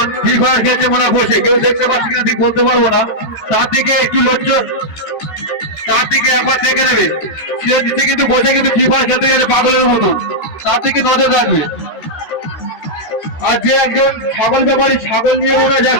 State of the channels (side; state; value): right; late; 13 ms